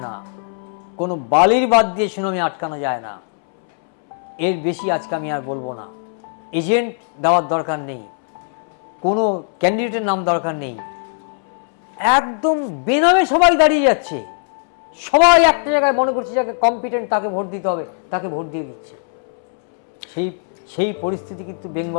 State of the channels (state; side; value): silent; right; 66 dB below the other